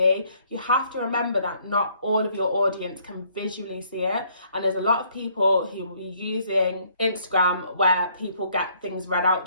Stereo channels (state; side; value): inverted; both; correlation -0.65